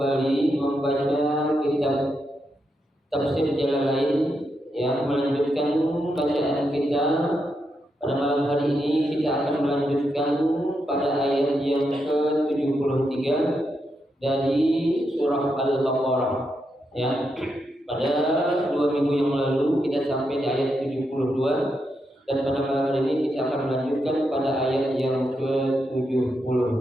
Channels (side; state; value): both; normal; correlation 0.83